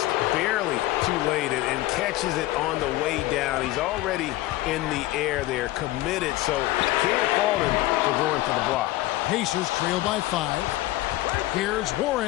barely too late and catches it on the way down. He's already in the air there, committed, so can't fault him for going for the block. Pacers trail by 5. Here's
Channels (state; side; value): quieter; right; 17.0 dB